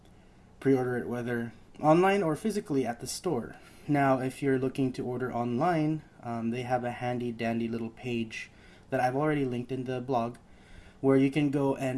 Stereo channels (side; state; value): both; identical; correlation 1.00